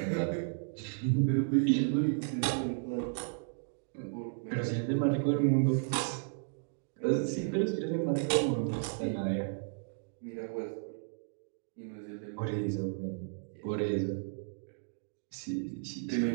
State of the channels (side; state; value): left; silent; digital silence